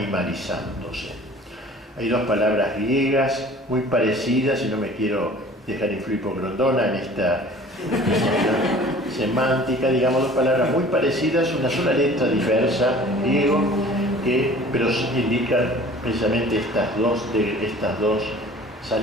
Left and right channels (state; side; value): normal; both; correlation 0.47